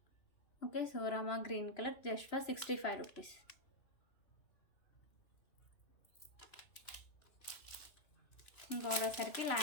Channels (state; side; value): late; right; 3.0 ms